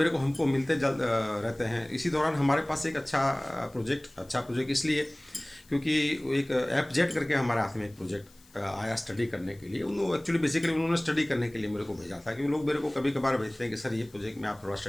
को हमको मिलते रहते हैं, इसी दौरान हमारे पास एक अच्छा प्रोजेक्ट इसलिए क्योंकि एक ऐप जेट करके हमारे हाथ में एक प्रोजेक्ट आया स्टडी करने के लिए। उन्होंने एक्चुअली बेसिकली उन्होंने स्टडी करने के लिए मेरे को भेजा था, क्योंकि लोग मेरे को कभी कभार भेजते हैं कि सर ये प्रोजेक्ट में आप थोड़ा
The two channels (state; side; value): noise; left; hiss, 28 dB below the sound